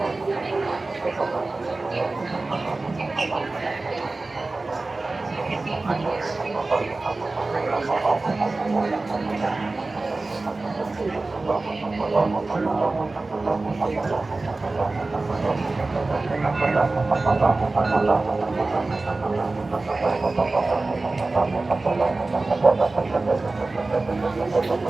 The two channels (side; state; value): left; quieter; 3.3 dB